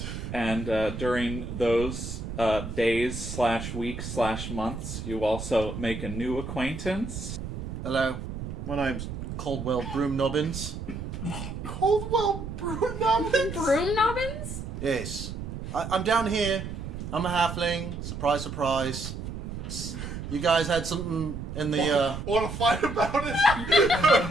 And during those days/weeks/months, you also make a new acquaintance. Hello. My name's Caldwell Broomnobbins. Caldwell Broomnobbins? Broomnobbins? Yes. I'm down here. I'm a halfling. Surprise, surprise. You guys had something in the, Want to fight about it?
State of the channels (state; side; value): noise; right; rumble, 7 dB below the sound